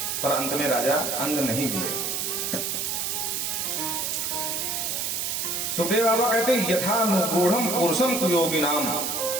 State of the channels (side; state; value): right; noise; hiss, 1 dB below the sound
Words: पर अंत में राजा अंग नहीं मिले। सुखदेव बाबा कहते यथानुगूढ़म पुरुषम कुयोगी नाम।